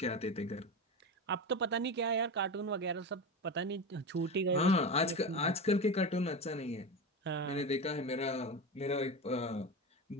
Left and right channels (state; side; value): normal; both; correlation 0.22